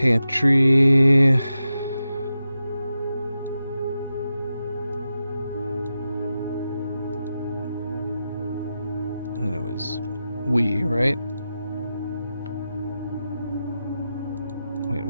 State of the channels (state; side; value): inverted; both; correlation -0.90